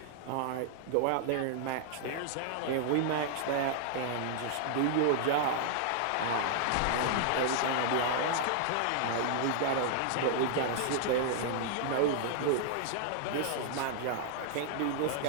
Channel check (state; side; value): different; both; correlation -0.01